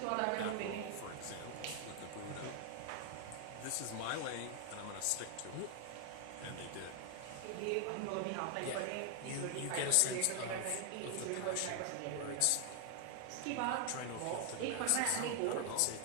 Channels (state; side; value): different; both; correlation 0.00